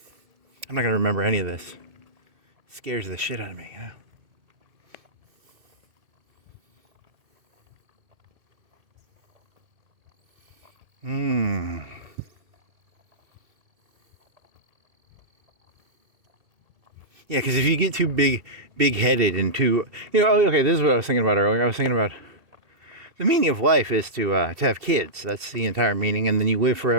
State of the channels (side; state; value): left; late; 2.9 ms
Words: not going to remember any of this. It scares the shit out of me, Yeah, because if you get too big-headed and too, okay, this is what I was thinking about earlier. I was thinking about the meaning of life is to have kids. That's the entire meaning, and then you live